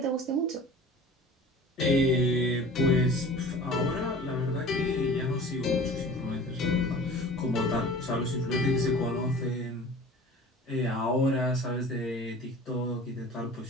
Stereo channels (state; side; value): normal; both; correlation 0.42